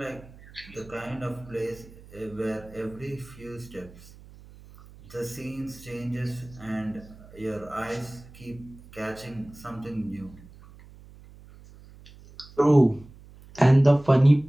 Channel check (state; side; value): noise; right; hum, 21 dB below the sound